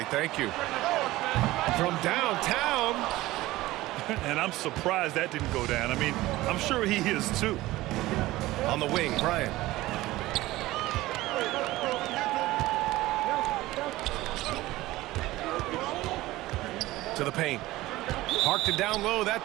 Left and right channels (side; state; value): left; quieter; 17.7 dB